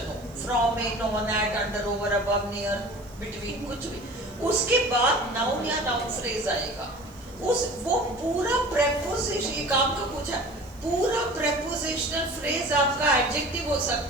हो, from, in, on, at, under, over, above, near, between, कुछ भी, उसके बाद नाउन या नाउन फ्रेज आएगा. वो पूरा प्रेपोजिशन, ये काम का पूछा, पूरा प्रेपोजिशनल फ्रेज आपका एडजेक्टिव हो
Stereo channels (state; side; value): noise; right; hiss, 28 dB below the sound